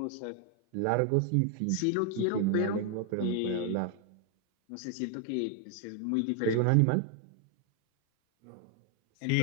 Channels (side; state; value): both; different; correlation 0.00